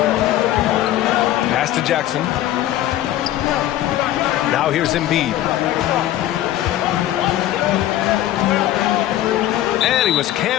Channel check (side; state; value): right; quieter; 13.4 dB